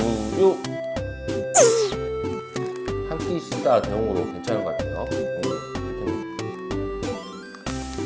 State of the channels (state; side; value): identical; both; correlation 1.00